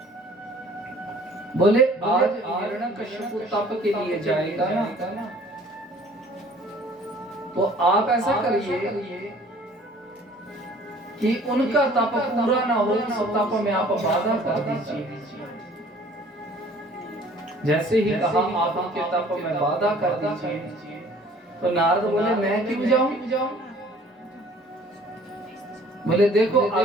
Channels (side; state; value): both; normal; correlation 0.53